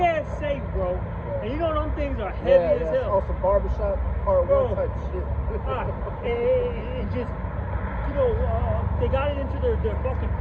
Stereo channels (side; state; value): both; identical; correlation 1.00